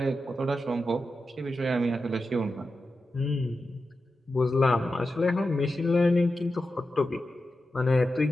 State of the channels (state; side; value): normal; both; correlation 0.91